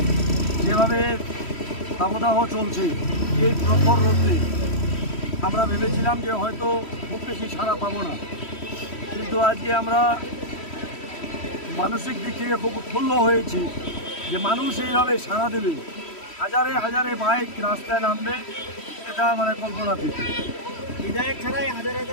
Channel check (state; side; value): late; right; 3.1 ms